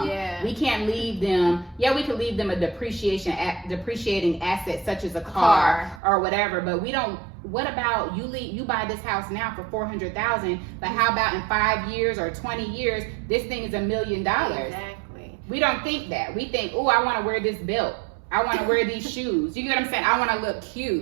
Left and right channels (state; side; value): drops out; left; at 6.0 s